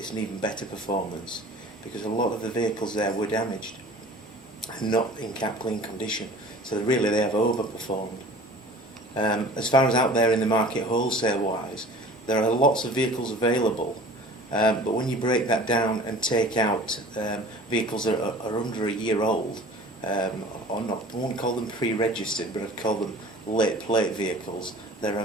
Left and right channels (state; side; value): normal; both; correlation 0.44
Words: an even better performance, because a lot of the vehicles there were damaged and not in cap clean condition. So really they have overperformed. As far as out there in the market wholesale wise, there are lots of vehicles available, but when you break that down and take out vehicles that are under a year old, or not, I won't call them pre-registered, but I'd call them late plate vehicles, there